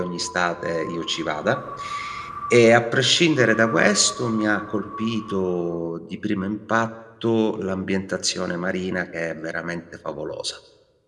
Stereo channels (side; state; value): both; identical; correlation 1.00